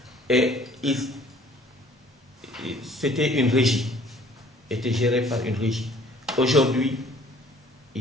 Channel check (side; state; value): both; normal; correlation 0.55